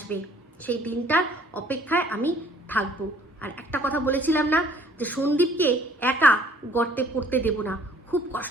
সেই দিনটার অপেক্ষায় আমি থাকবো। আর একটা কথা বলেছিলাম না, যে সন্দীপকে একা গর্তে পড়তে দেব না। খুব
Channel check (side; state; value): both; normal; correlation 0.57